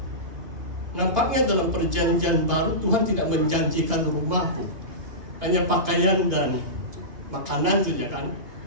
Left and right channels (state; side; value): late; left; 2.5 ms